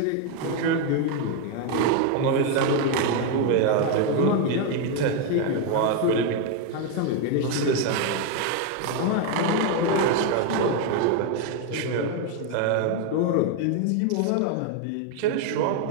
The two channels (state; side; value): different; both; correlation 0.01